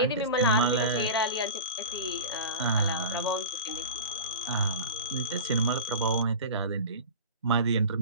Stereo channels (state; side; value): inverted; both; correlation -0.31